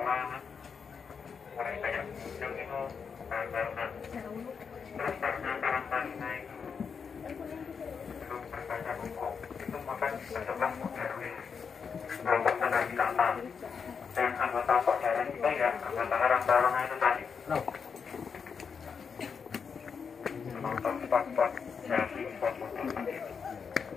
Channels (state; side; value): quieter; right; 6.1 dB